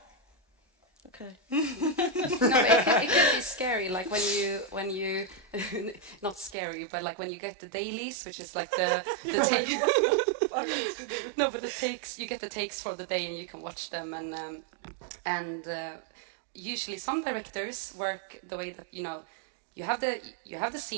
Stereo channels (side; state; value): left; drops out; at 6.6 s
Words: Okay. No, but it can be scary, like when you not scary, but like when you get the dailies, which is like the take. No, but the takes, you get the takes for the day and you can watch them, and usually some directors work the way that you have the